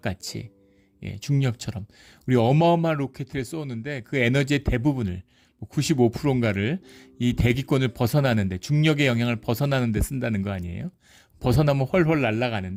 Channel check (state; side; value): identical; both; correlation 1.00